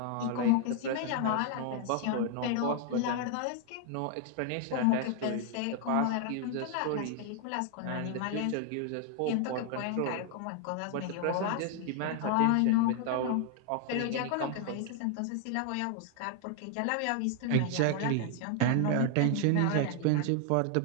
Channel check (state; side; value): different; both; correlation 0.00